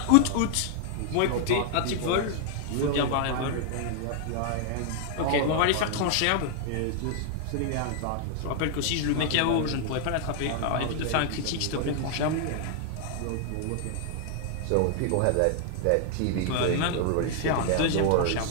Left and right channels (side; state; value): both; different; correlation 0.00